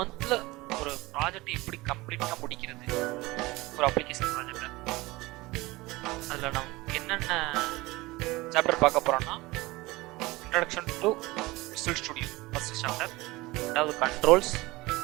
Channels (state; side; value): quieter; left; 21.1 dB